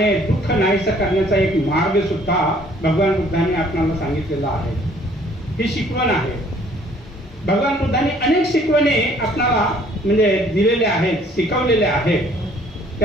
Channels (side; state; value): both; normal; correlation 0.59